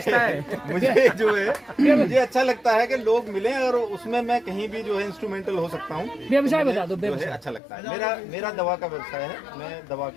है। मुझे जो है मुझे अच्छा लगता है कि लोग मिलें और उसमें मैं कहीं भी जो है इंस्ट्रूमेंटल हो सकता हूँ। व्यवसाय बता दो। जो है अच्छा लगता है। मेरा दवा का व्यवसाय है। मैं दवा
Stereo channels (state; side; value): drops out; right; at 7.6 s